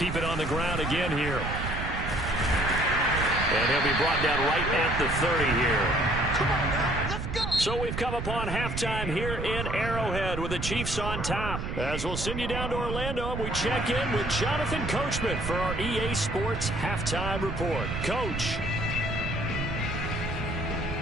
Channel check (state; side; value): noise; right; rumble, 4 dB below the sound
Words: it on the ground again here. And he'll be brought down right at the 30 here. Come on now, let's go. So we've come upon halftime here in Arrowhead with the Chiefs on top. As we'll send you down to Orlando and we check in with Jonathan Coachman for our EA Sports Halftime Report. Coach.